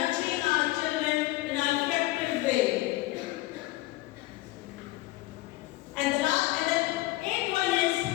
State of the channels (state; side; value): quieter; right; 18.8 dB